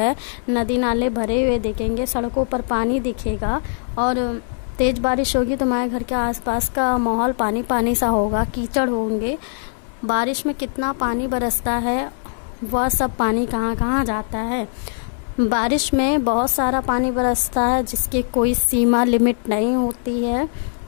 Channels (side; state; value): right; silent; digital silence